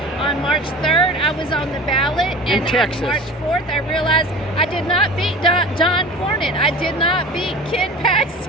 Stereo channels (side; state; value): both; normal; correlation 0.37